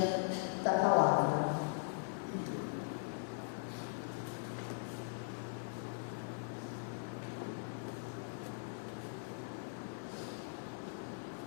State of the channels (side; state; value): right; silent; 51 dB below the other